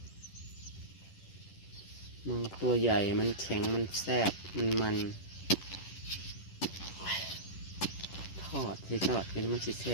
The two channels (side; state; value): right; late; 10 ms